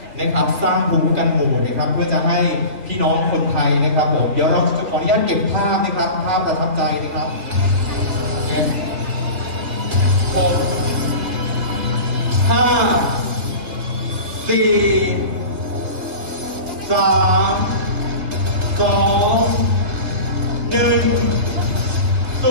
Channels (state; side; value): late; left; 2.4 ms